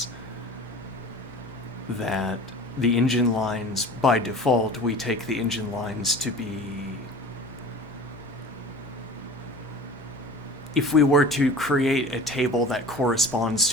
That the engine lines, by default, we take the engine lines to be... If we were to create a table that corresponds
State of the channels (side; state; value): both; normal; correlation 0.40